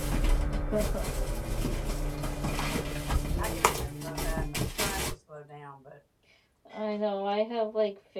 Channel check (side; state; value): both; identical; correlation 1.00